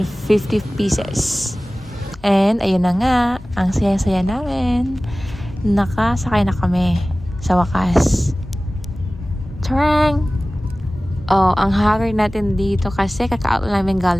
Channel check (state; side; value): normal; both; correlation 0.97